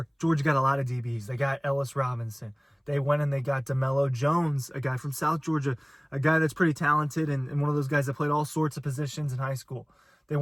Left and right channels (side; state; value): both; identical; correlation 1.00